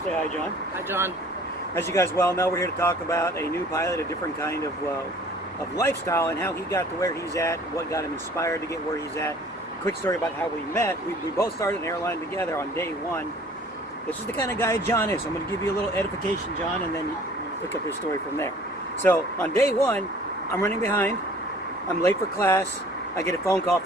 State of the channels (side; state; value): both; normal; correlation 0.51